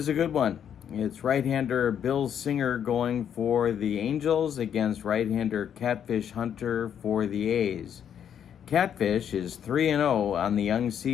a good one. It's right-hander Bill Singer going for the Angels against right-hander Catfish Hunter for the A's. Catfish is 3-0 on the young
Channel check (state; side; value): quieter; right; 8.8 dB